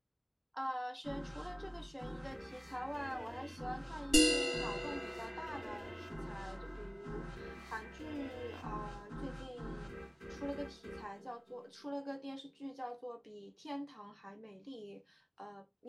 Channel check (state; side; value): identical; both; correlation 1.00